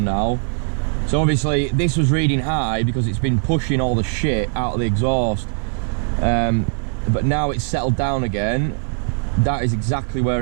now. So obviously this was reading high because it's been pushing all the shit out of the exhaust. But now it's settled down again. That is exactly where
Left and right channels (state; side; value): silent; left; 59 dB below the other